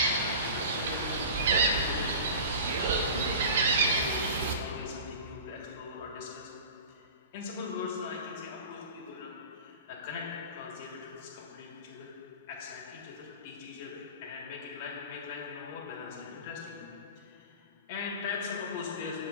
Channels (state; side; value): inverted; both; correlation -0.35